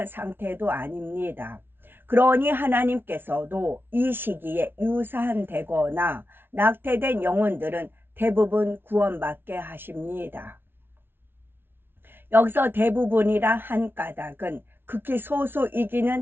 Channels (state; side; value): late; left; 0.11 ms